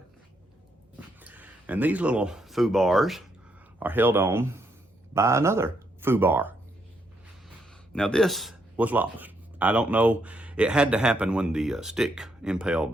And these little foo bars are held on by another foo bar. Now this was lost. I don't know, it had to happen when the stick impaled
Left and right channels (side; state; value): both; normal; correlation 0.76